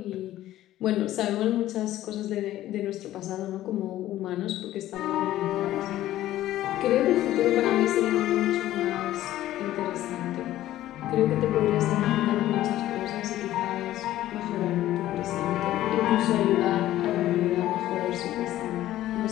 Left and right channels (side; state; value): right; quieter; 14.1 dB